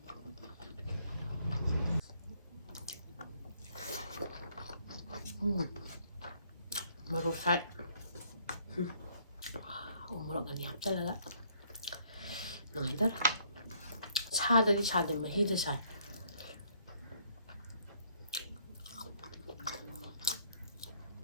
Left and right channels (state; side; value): inverted; both; correlation -0.66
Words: ꯃꯣꯔꯣꯛ ꯁꯥꯏ ꯃꯣꯔꯣꯛ ꯑꯅꯤ ꯍꯥꯞꯆꯤꯜꯂꯒ ꯅꯨꯡꯉꯥꯏꯇꯔꯦ ꯁꯥꯗꯗꯤ ꯁꯥꯗꯦ ꯃꯍꯤꯗ ꯁꯥꯏ